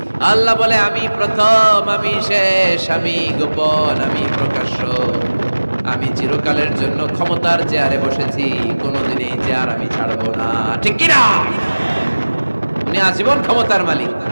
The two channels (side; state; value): both; inverted; correlation -1.00